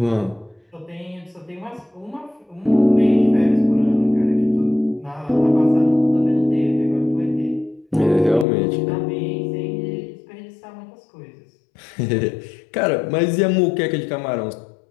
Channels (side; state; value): right; drops out; at 8.5 s